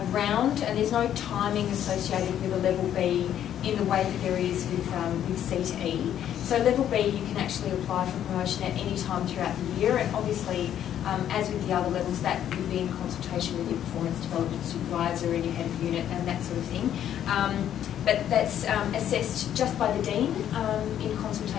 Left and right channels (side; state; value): right; quieter; 10.5 dB